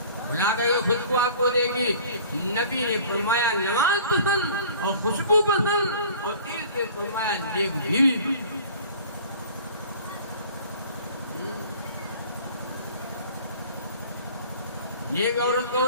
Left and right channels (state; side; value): inverted; both; correlation -0.47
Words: بلا کر یہ خوشبو آپ کو دے گی۔ نبی نے فرمایا نماز پسند اور خوشبو پسند، اور تیسرے فرمایا نیک بیوی۔ نیک عورت